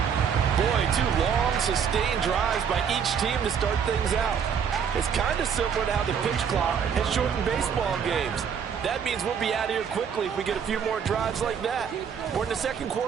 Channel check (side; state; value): left; quieter; 7.3 dB